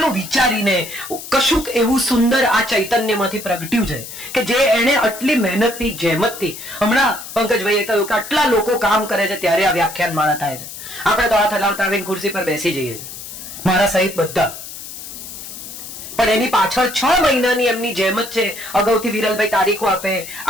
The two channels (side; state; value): left; noise; hiss, 12 dB below the sound